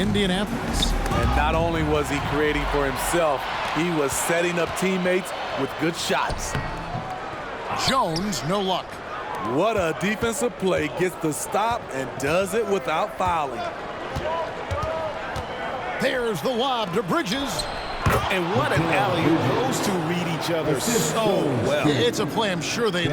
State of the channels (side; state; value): both; identical; correlation 1.00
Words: And not only was he creating for himself, he was setting up teammates with good shots. Jones, no luck. What a defensive play. Gets the stop and does it without fouling. There's the lob to Bridges. And what an alley-oop. Those two read each other so well. It's a play I'm sure they'd